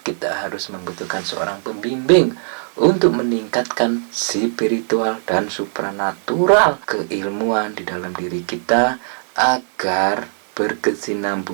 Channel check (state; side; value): silent; left; digital silence